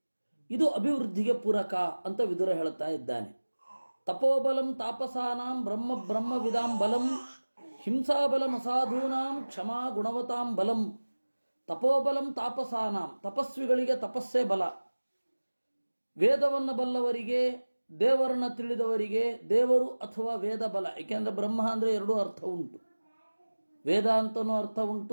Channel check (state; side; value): inverted; both; correlation -1.00